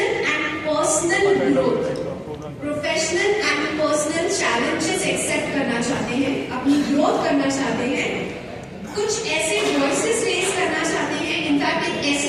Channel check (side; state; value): both; identical; correlation 1.00